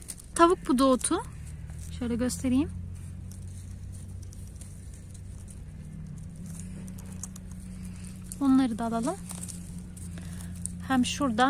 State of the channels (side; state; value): both; identical; correlation 1.00